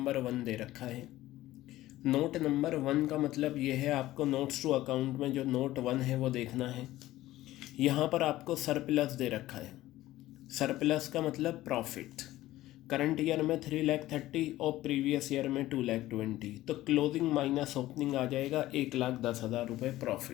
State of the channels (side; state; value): right; quieter; 15.8 dB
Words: 1 दे रखा है। नोट नंबर 1 का मतलब ये है आपको नोट्स टू अकाउंट में जो नोट 1 है वो देखना है। यहाँ पर आपको सरप्लस दे रखा है। सरप्लस का मतलब प्रॉफिट। करंट ईयर में 3,30,000 और प्रीवियस ईयर में 2,20,000, तो क्लोजिंग माइनस ओपनिंग आ जाएगा 1,10,000 रुपये